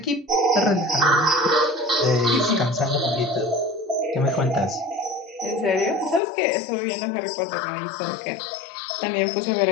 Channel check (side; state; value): right; drops out; at 6.2 s